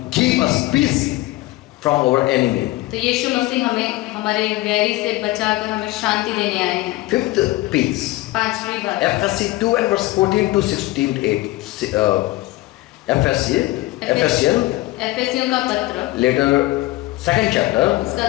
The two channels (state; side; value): quieter; right; 18.5 dB